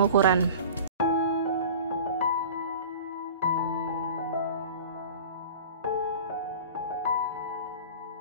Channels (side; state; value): both; inverted; correlation -0.38